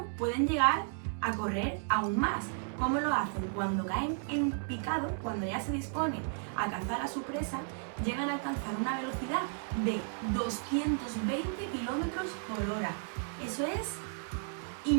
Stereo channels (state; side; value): silent; left; 55 dB below the other